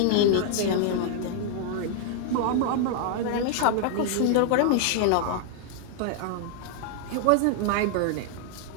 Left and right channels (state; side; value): different; both; correlation 0.00